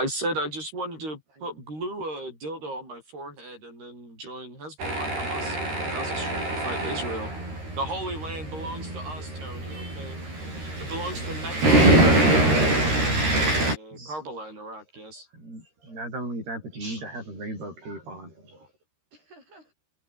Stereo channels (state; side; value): late; left; 13 ms